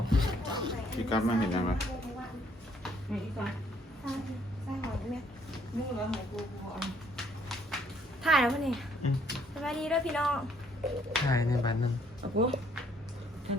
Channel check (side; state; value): both; normal; correlation 0.65